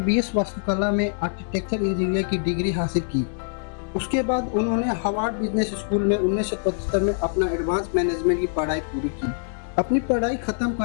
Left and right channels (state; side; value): silent; right; 62 dB below the other